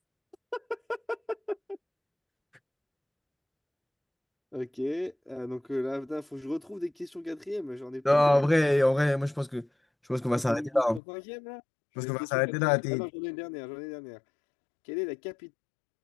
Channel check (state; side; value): drops out; right; at 11.0 s